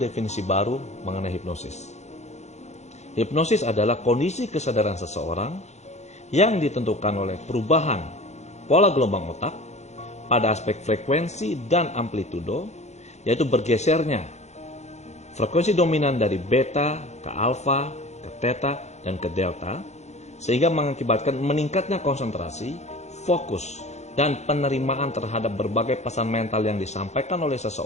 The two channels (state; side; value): late; right; 0.33 ms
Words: baru mengenai hipnosis. Hipnosis adalah kondisi kesadaran seseorang yang ditentukan oleh perubahan pola gelombang otak pada aspek frekuensi dan amplitudo, yaitu bergesernya frekuensi dominan dari beta ke alfa, ke theta, dan ke delta, sehingga mengakibatkan meningkatnya konsentrasi, fokus, dan penerimaan terhadap berbagai pesan mental yang disampaikan oleh